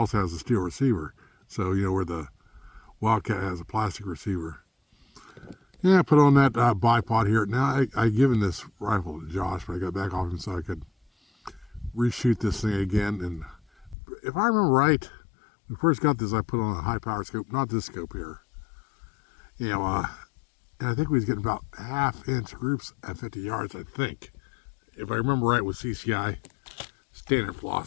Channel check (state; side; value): drops out; right; at 14.0 s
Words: has a steel receiver. So, you know, where the Wildcat has a plastic receiver. Yeah, I put on that bipod here. Now, I given this rifle to Josh, but I got back off him so I could reshoot this thing again. And if I remember right, when I first got this, I put on a high power scope, not this scope here. You know, and I think we was getting about half-inch groups at 50 yards, I think. If I remember right with CCI standard